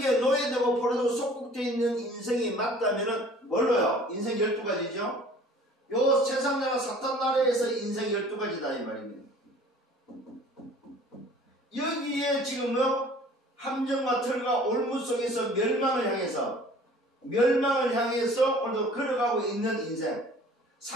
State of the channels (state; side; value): normal; both; correlation 0.49